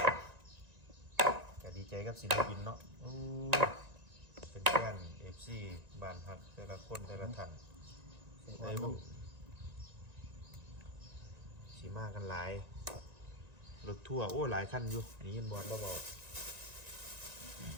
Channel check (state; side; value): late; left; 1.9 ms